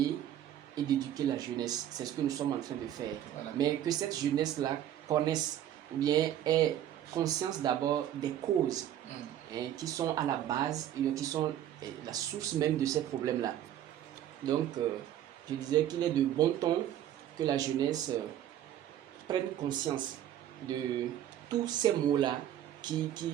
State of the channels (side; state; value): left; quieter; 11.4 dB